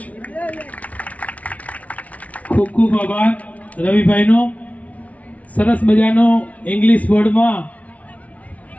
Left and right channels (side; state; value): right; late; 0.068 ms